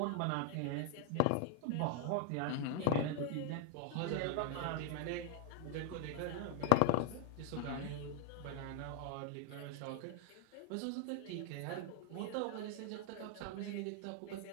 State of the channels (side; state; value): both; different; correlation 0.00